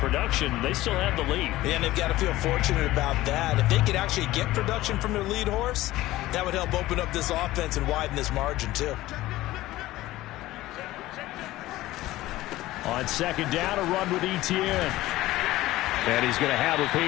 they still have the lead. Yeah, and they've got to feel fortunate about that. If they could actually get production from their lead horse, that would help open up this offense and widen this margin, too. On 2nd down, a run with Etienne. And he's going to have a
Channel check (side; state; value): right; quieter; 16.7 dB